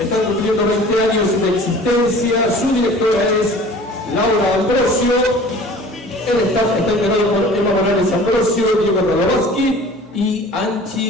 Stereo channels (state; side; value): normal; both; correlation 0.45